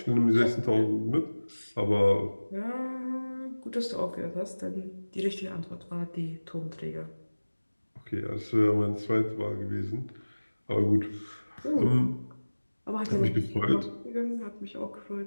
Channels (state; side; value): inverted; both; correlation -1.00